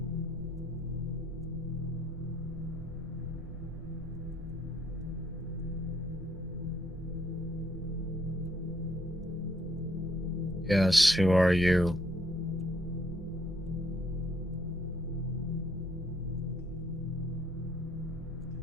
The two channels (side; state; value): right; noise; rumble, 14 dB below the sound